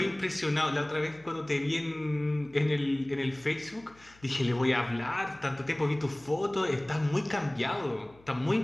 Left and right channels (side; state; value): left; noise; hum, 27 dB below the sound